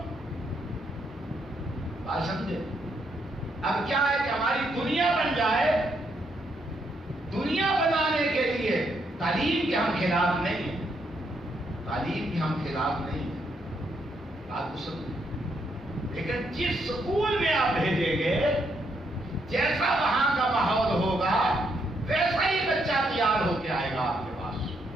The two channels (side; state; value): both; normal; correlation 0.76